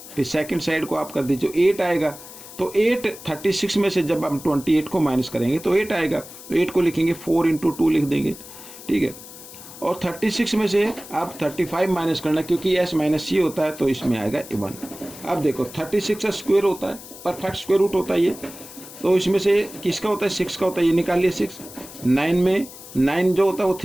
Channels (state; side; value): noise; left; hiss, 16 dB below the sound